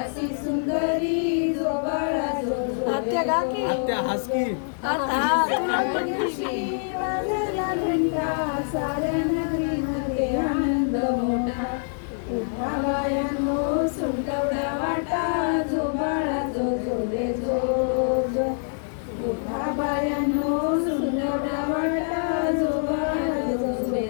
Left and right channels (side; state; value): right; silent; 61 dB below the other